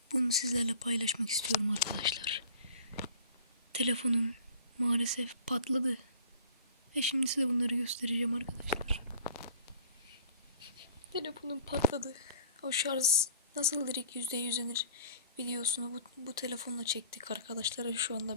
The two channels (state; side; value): inverted; both; correlation -0.47